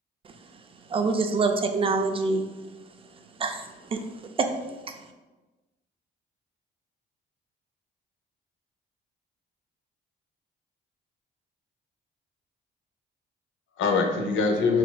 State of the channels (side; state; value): both; normal; correlation 0.47